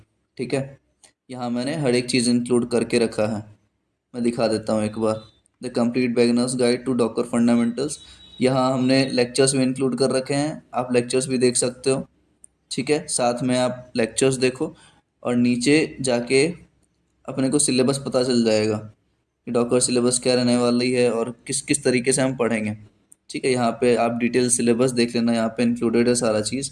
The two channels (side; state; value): both; identical; correlation 1.00